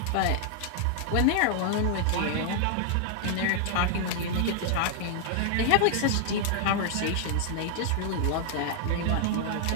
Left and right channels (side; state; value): both; different; correlation 0.00